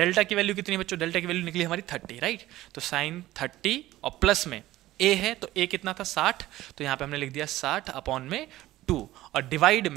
की वैल्यू कितनी है बच्चों, डेल्टा की वैल्यू निकली हमारी 30, राइट। तो साइन 30 और प्लस में ए है तो ए कितना था 60, तो यहाँ पे हमने लिख दिया 60 अपॉन में 2 और डिवाइड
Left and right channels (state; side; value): quieter; left; 15.9 dB